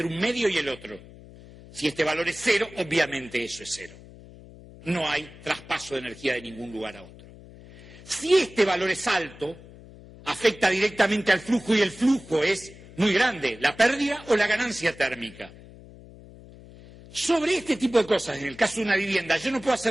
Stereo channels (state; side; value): noise; left; hum, 19 dB below the sound